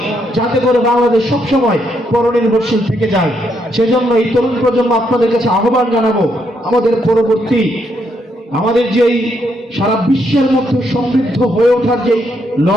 যাতে করে বাংলাদেশ সবসময় পরনির্ভরশীল থেকে যায়। সেজন্য এই তরুণ প্রজন্ম আপনাদের কাছে আহ্বান জানাবো, আমাদের পরবর্তী আমাদের যেই সারা বিশ্বের মধ্যে সমৃদ্ধ হয়ে ওঠার যে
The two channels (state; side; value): normal; both; correlation 0.76